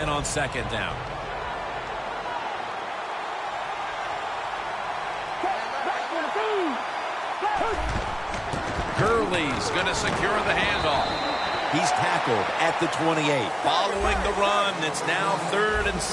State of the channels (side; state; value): both; identical; correlation 1.00